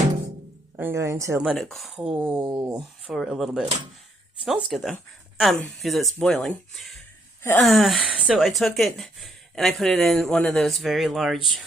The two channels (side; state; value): both; normal; correlation 0.71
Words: going to let it cool for a little bit. It smells good though, because it's boiling. So I took it and I put it in one of those very large